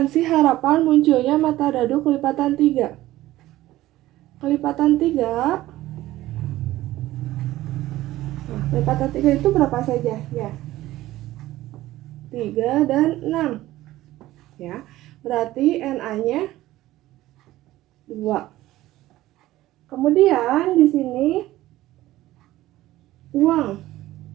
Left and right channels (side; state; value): left; quieter; 15.9 dB